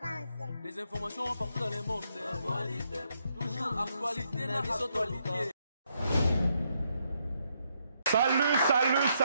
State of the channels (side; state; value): both; inverted; correlation -0.77